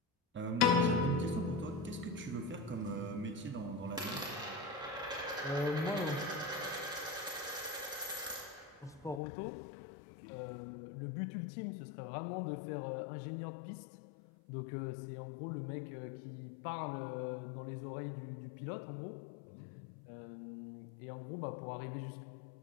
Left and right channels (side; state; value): right; drops out; at 9.2 s